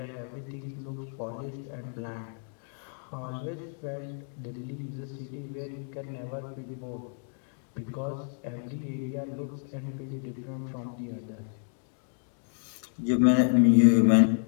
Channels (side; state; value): right; silent; 58 dB below the other